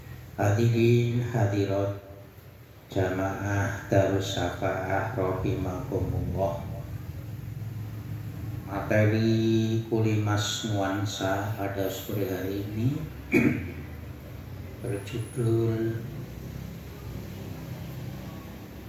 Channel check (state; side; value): identical; both; correlation 1.00